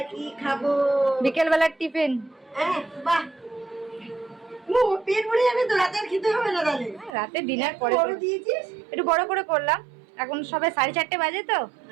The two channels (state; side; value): drops out; left; at 7.2 s